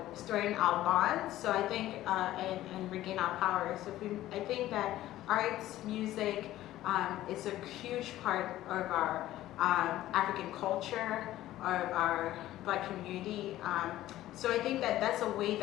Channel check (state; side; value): quieter; right; 14.6 dB